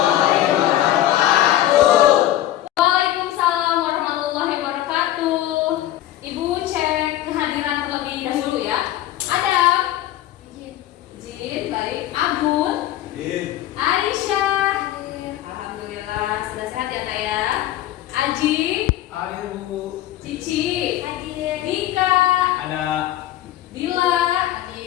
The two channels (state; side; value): quieter; right; 13.5 dB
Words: wabarakatuh. Waalaikumsalam warahmatullahi wabarakatuh. Ibu cek kehadiran terlebih dahulu ya. Adam. Izin, baik. Abun. Aisyah. Alhamdulillah sudah sehat ya Kak ya. Aji. Ada Bu. Cici. Hadir. Dika. Ada. Dila.